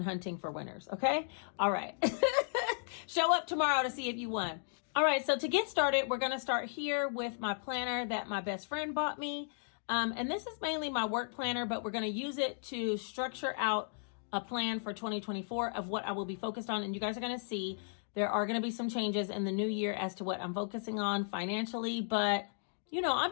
hunting for winners, okay? All right. Show up tomorrow to see if you won. All right, so to get started, we're going to start here with my planner that my best friend bought me. And this is mainly my work planner, but we're going to use it to structure out a plan for 2024 of what I will be focused on. And you guys are going to see there are going to be some changes in the new year as to what I'm focusing on financially. But, you know, I'm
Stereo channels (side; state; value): right; silent; digital silence